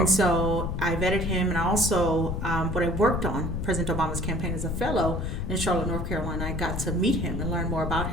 so I vetted him, and I also, when I worked on President Obama's campaign as a fellow in Charlotte, North Carolina, I got to meet him and learn more about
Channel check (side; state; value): left; noise; rumble, 2 dB below the sound